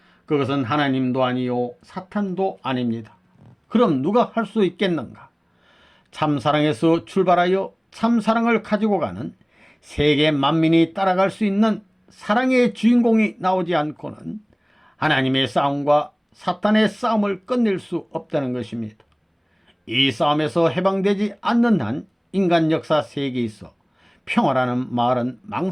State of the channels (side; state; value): both; identical; correlation 1.00